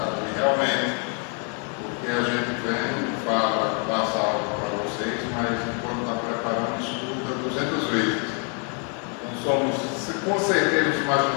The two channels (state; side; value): quieter; right; 39.5 dB